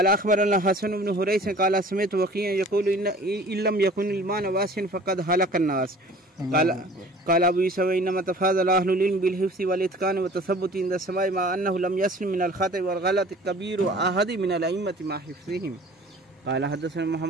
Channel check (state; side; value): normal; both; correlation 0.47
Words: أخبرنا حسن بن حريث قال سمعت وكيعا يقول إن لم يكن المعنى واسعا فقد هلك الناس. قال أبو يوسف إنما تفاضل أهل العلم بالحفظ والإتقان والتثبت عند السماع مع أنه لم يسلم من الخطأ والغلط كبير أحد من الأئمة مع حفظهم. قال حدثنا